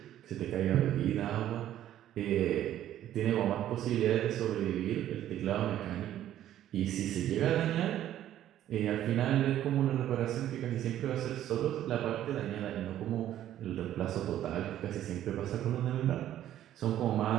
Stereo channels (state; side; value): quieter; left; 12.1 dB